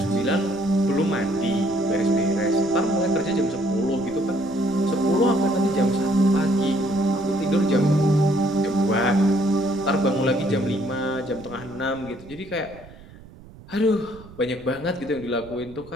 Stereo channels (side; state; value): right; noise; rumble, 20 dB below the sound